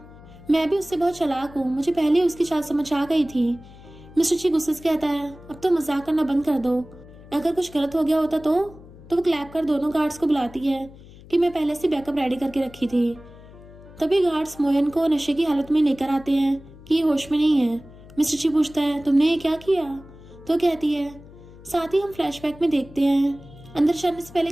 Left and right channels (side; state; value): left; noise; hum, 20 dB below the sound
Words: मैं भी उससे बहुत चालाक हूँ, मुझे पहले उसकी चाल समझ आ गई थी। मिस्टर जी गुस्से से कहता है अब तो मजाक करना बंद कर दो, अगर कुछ गलत हो गया होता तो वो क्लैप कर दोनों गार्ड्स को बुलाती है कि मैं पहले से बैकअप रेडी करके रखी थी। तभी गार्ड्स मोयन को नशे की हालत में लेकर आते हैं कि ये होश में नहीं है। मिस्टर ची पूछता है, तुमने ये क्या किया? तो कहती है। साथ ही हम फ्लैशबैक में देखते हैं अंदर जाने से पहले